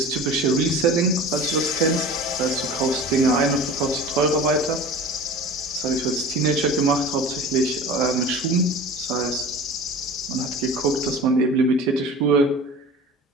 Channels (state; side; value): normal; both; correlation 0.37